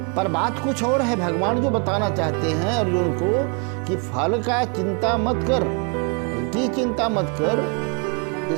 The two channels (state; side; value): quieter; left; 36.0 dB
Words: पर बात कुछ और है। भगवान जो बताना चाहते हैं अर्जुन को कि फल का चिंता मत कर, की चिंता मत कर,